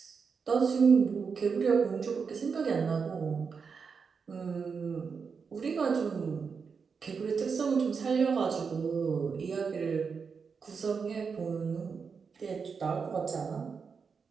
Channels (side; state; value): left; quieter; 5.6 dB